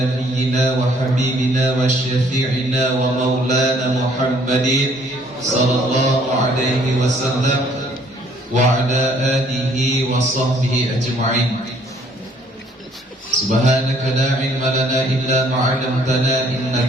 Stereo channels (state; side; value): normal; both; correlation 0.62